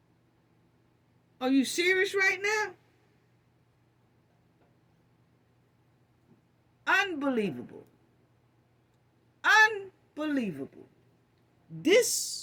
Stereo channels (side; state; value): both; identical; correlation 1.00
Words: Are you serious right now? Unbelievable. Unbelievable.